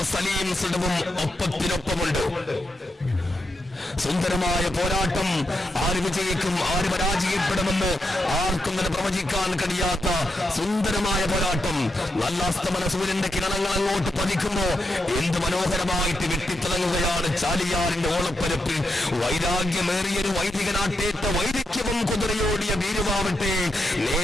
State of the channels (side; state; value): both; normal; correlation 0.84